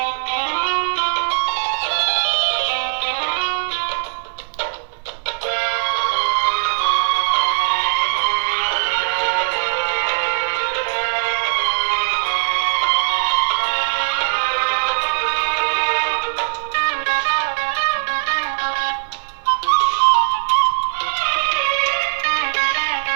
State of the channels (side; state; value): left; silent; digital silence